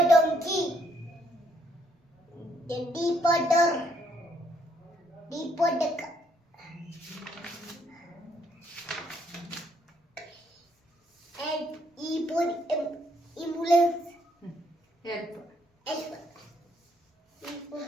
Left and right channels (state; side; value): normal; both; correlation 0.70